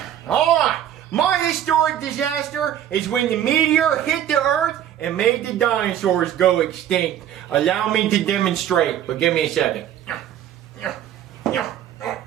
All right, my historic disaster is when the meteor hit the Earth and made the dinosaurs go extinct. Allow me to demonstrate, but give me a second.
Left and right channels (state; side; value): quieter; left; 10.8 dB